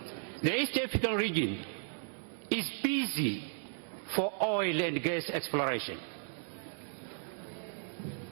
The East African region is busy for oil and gas exploration.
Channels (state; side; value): silent; left; digital silence